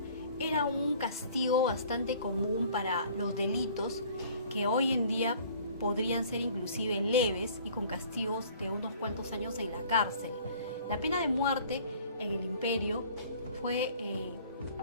era un castigo bastante común para los delitos que hoy en día podrían ser inclusive leves y con castigos de unos cuantos años en la cárcel. La pena de muerte en el imperio fue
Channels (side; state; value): both; inverted; correlation -0.52